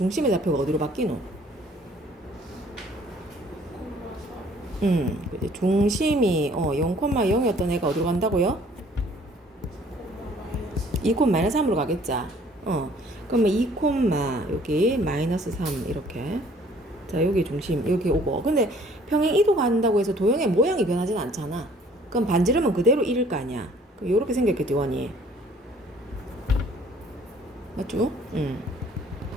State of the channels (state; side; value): normal; both; correlation 0.57